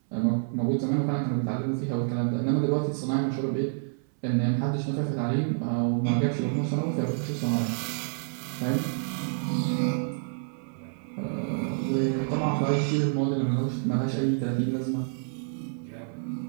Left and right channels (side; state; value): left; silent; 59 dB below the other